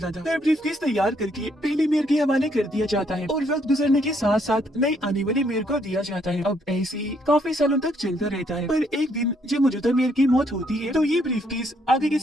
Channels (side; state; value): both; normal; correlation 0.70